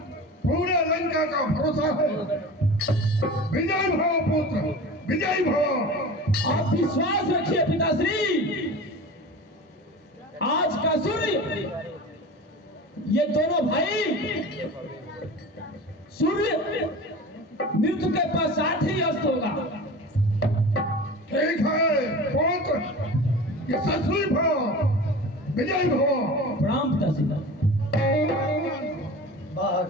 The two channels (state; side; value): normal; both; correlation 0.35